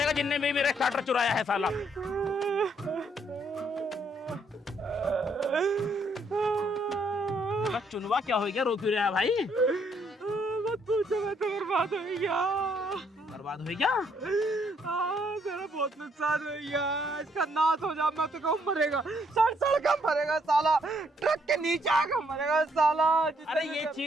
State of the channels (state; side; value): normal; both; correlation 0.70